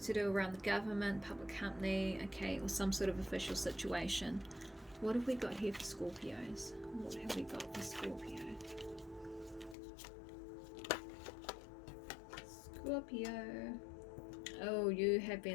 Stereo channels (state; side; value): drops out; right; at 9.8 s